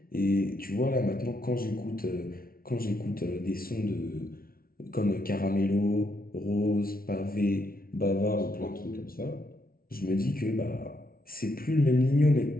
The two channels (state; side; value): late; right; 0.43 ms